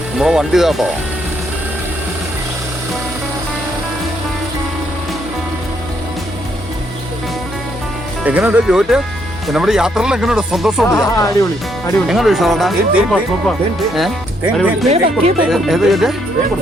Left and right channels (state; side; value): normal; both; correlation 0.73